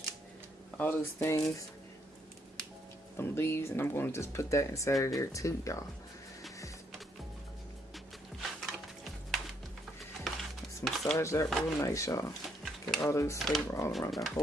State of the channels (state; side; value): normal; both; correlation 0.72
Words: all those things, some leaves, and I'm going to just put that inside of there too, y'all. massage that real nice, y'all. Get all those flavor all around that